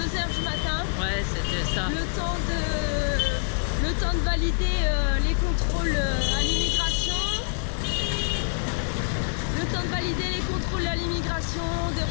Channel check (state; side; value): silent; right; digital silence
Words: du matin. Ouais, c'était ça. Le temps de valider les contrôles à l'immigration. Le temps de valider les contrôles à l'immigration, de